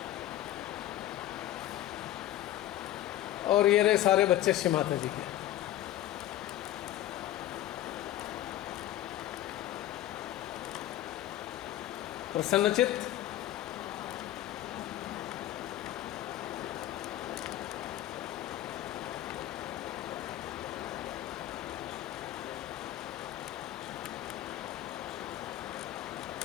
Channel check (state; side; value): quieter; right; 13.6 dB